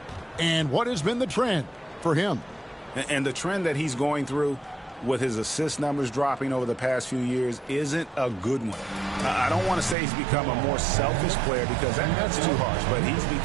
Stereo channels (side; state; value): left; drops out; at 10.0 s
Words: and what has been the trend for him. And the trend that he's going through with his assist numbers dropping over the past few years isn't a good one. I don't want to say he's become a more selfish player because that's too harsh, but he's